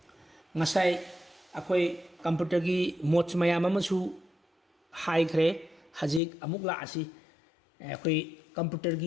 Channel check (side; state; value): right; drops out; at 6.2 s